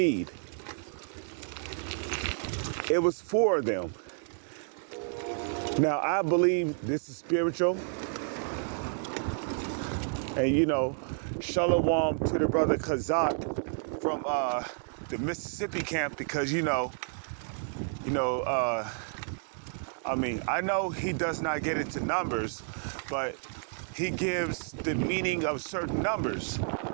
It was 4 of them. Now, I believe this is spiritual. And, shalom to the brother Kazak from the Mississippi camp, because, I know he does not get into numbers, but he gives the meaning of certain numbers,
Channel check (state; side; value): silent; left; 57 dB below the other